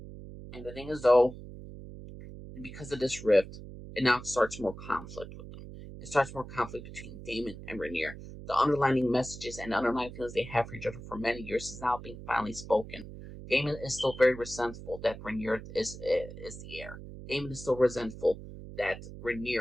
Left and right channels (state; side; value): noise; right; hum, 13 dB below the sound